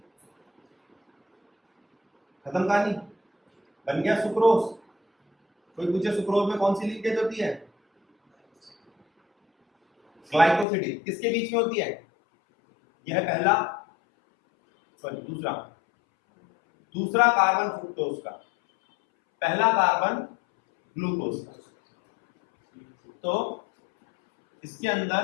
खत्म कहानी, बन गया सुक्रोज। कोई पूछे सुक्रोज में कौन सी लिंकेज होती है? ग्लाइकोसिडिक। किसके बीच में होती है? यह है पहला, सॉरी दूसरा कार्बन फ्रुक्टोज का, पहला कार्बन ग्लूकोज का। तो इसके अंदर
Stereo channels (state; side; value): drops out; right; at 10.7 s